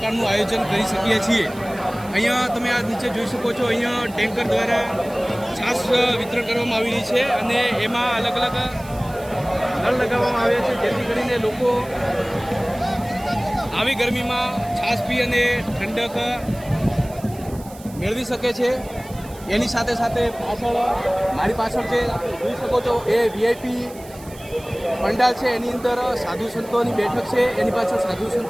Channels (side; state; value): right; noise; hiss, 21 dB below the sound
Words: આયોજન કરી શકીએ છીએ। અહીંયા તમે આ નીચે જોઈ શકો છો, અહીંયા ટેન્કર દ્વારા છાશ વિતરણ કરવામાં આવી રહી છે અને એમાં અલગ અલગ નળ લગાવવામાં આવ્યા છે, જેથી કરીને લોકો આવી ગરમીમાં છાશ પી અને ઠંડક મેળવી શકે છે। એની સાથે સાથે મારી પાછળ જે જોઈ શકો છો એ VIP પંડાલ છે, એની અંદર સાધુ સંતોની બેઠક છે, એની પાછળ સાધુ